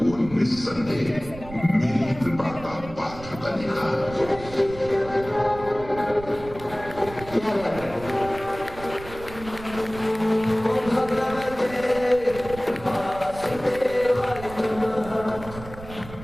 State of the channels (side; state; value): right; noise; rumble, 15 dB below the sound